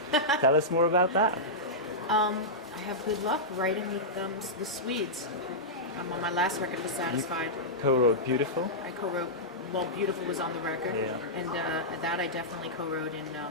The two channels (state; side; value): normal; both; correlation -0.12